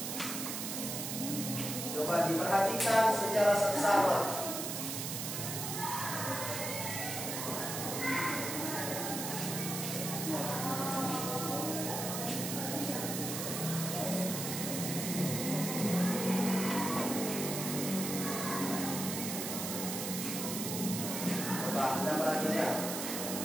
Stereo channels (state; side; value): noise; right; hiss, 4 dB below the sound